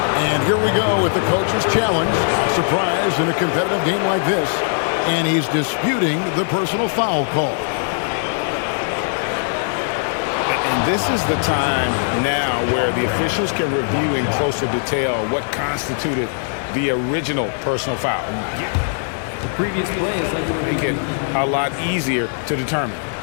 And here we go with the coach's challenge. Not surprised in a competitive game like this. And he's disputing the personal foul call. And this is the time now where the officials can review in closer detail what constituted the original personal foul. The previous play is under review. Make it a lot easier to determine.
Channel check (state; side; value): silent; right; digital silence